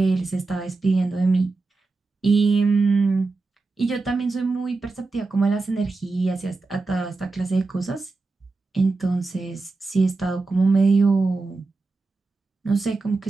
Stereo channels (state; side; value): quieter; left; 3.7 dB